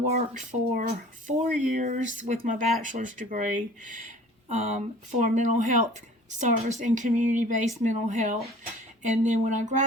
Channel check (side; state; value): both; normal; correlation 0.48